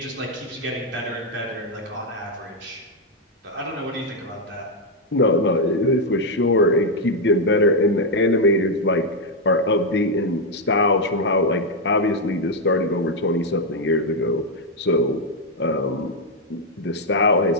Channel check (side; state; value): both; normal; correlation 0.01